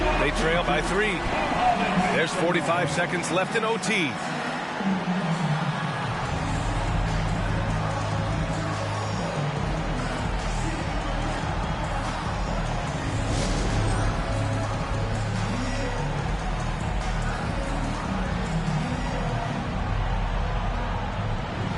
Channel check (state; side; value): identical; both; correlation 1.00